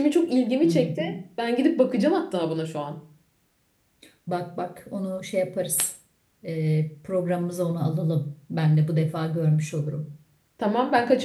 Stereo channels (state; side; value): identical; both; correlation 1.00